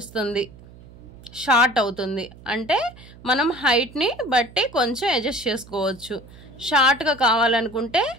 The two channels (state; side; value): noise; right; hum, 21 dB below the sound